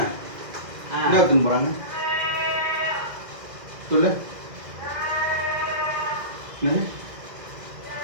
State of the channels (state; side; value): late; left; 2.0 ms